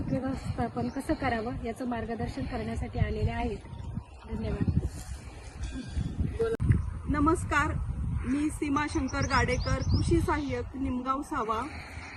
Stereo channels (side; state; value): both; identical; correlation 1.00